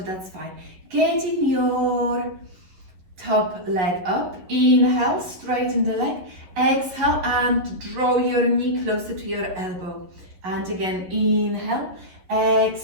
that's fine. Getting your top leg up. Inhale, straighten the leg. Exhale and draw your knee closer to your elbow. And again, inhale,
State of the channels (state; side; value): late; left; 11 ms